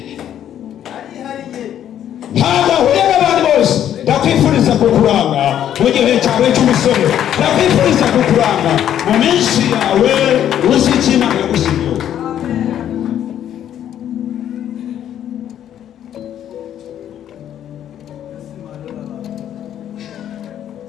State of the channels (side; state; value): right; quieter; 10.5 dB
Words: ntabwo ahuye n'abandi bose ndakwifuriza kukuranga mu gihe cyawe cy'umusore ndakwifuriza kukuranga mu minsi yawe uzi icyo Imana yagushyiriyeho